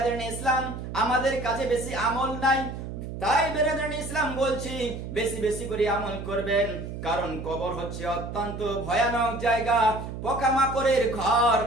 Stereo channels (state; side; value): noise; right; hum, 8 dB below the sound